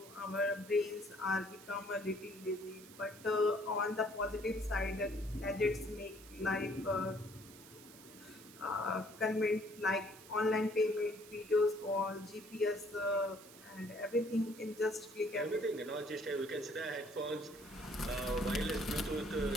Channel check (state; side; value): noise; right; hiss, 19 dB below the sound